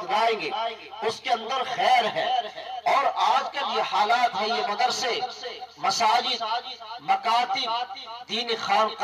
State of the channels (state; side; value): identical; both; correlation 1.00